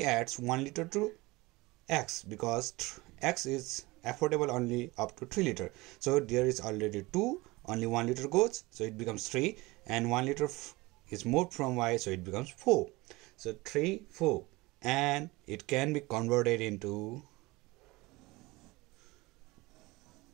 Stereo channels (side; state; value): left; quieter; 22.1 dB